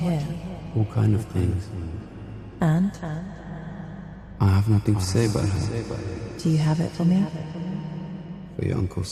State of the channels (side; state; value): both; identical; correlation 1.00